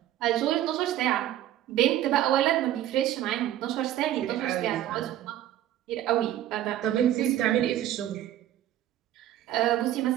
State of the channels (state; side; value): quieter; left; 12.6 dB